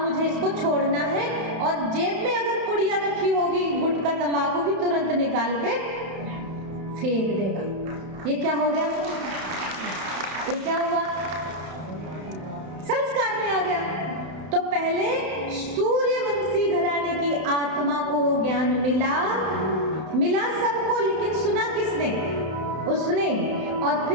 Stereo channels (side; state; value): left; late; 31 ms